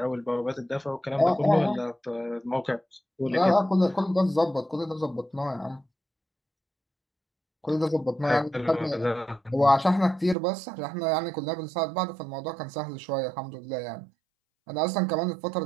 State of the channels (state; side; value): drops out; left; at 10.4 s